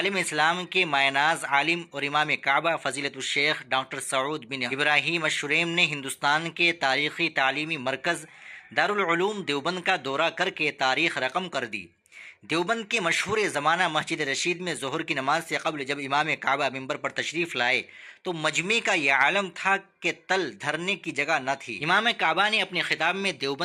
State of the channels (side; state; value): both; identical; correlation 1.00